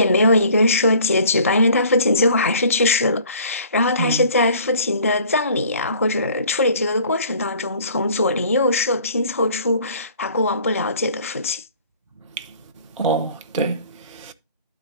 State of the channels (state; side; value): inverted; both; correlation -0.52